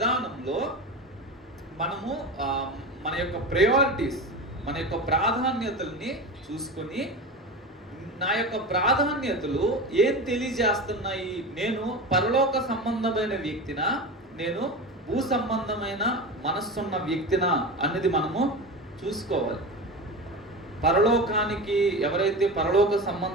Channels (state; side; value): normal; both; correlation 0.27